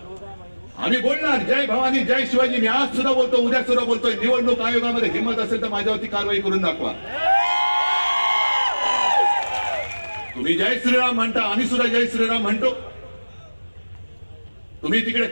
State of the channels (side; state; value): both; inverted; correlation -1.00